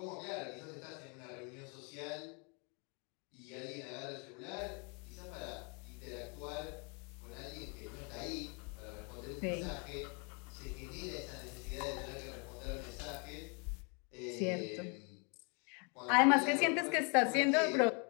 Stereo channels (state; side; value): quieter; right; 35.2 dB